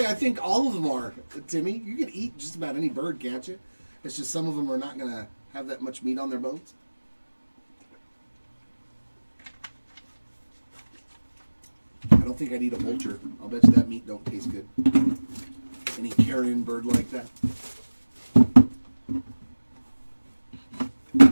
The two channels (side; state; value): both; inverted; correlation -1.00